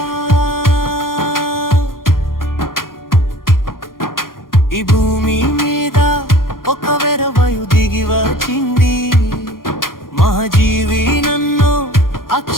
ఈ భూమి మీద ఒక వెరవయు దిగి వచ్చింది మహాజీవి నన్ను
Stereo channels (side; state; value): right; late; 0.91 ms